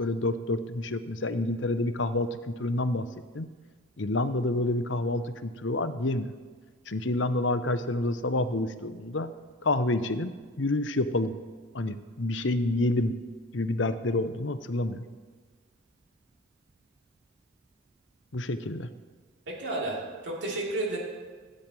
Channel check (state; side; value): normal; both; correlation 0.34